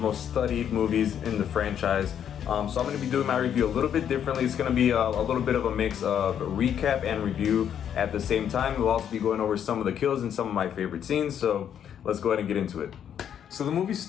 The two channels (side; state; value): right; quieter; 9.1 dB